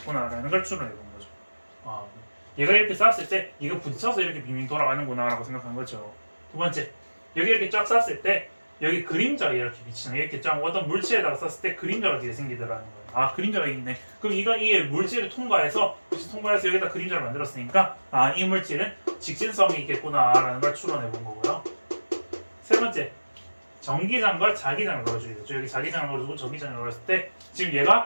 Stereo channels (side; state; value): both; inverted; correlation -1.00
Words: 걸 추론해 본 거죠. 얘가 이렇게 쐈을 때 이거 부딪혀서 이렇게 빙빙 돌아가는구나 라고 생각한 거죠. 두 번째, 여기 이렇게 쫙 쐈을 때 여기 그림자가 이렇게 비치는 이렇게 쫙 어떤 물체에다가 쐈을 때 그림자가 뒤에 생기더라는 거예요. 그림자가 있네. 그럼 이게 물질을 통과해서 여기다 그림자를 만들었으니까 이 물질은 직진성이 있겠구나라는 걸 추론해 본 거고요. 세 번째, 전기장과 자기장을 넣어주겠죠. 여기 자기장을 넣어주고 전기장을 넣었을 때 지금